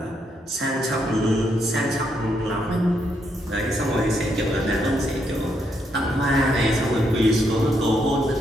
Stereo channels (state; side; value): normal; both; correlation 0.77